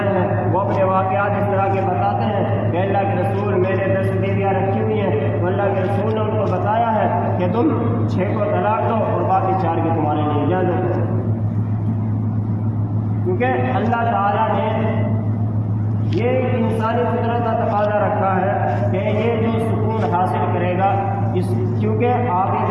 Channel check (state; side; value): identical; both; correlation 1.00